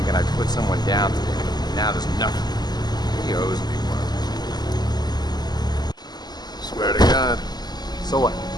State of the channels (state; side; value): late; right; 0.20 ms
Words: I'd put someone down today. Now there's nothing. He owes me one. Swear to God. So what?